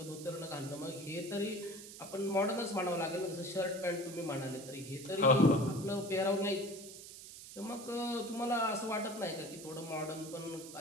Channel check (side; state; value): right; noise; hiss, 13 dB below the sound